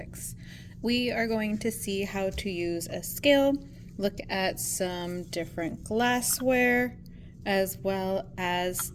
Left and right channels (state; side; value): identical; both; correlation 1.00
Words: We are going to see how to use a scale, look at some different glassware, as well as